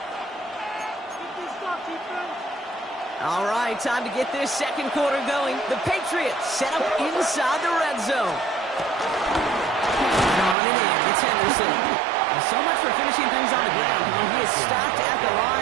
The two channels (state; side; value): drops out; left; at 10.6 s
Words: All right, time to get this second quarter going. The Patriots set up inside the red zone. On and in, it's Henderson. So much for finishing things on the ground. When he is stopped at the